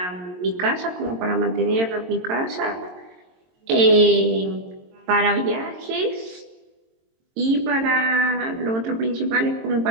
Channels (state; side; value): late; left; 22 ms